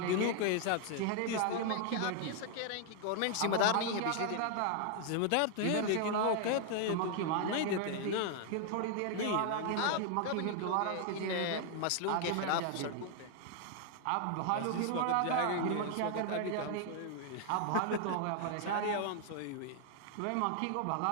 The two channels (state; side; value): different; both; correlation 0.00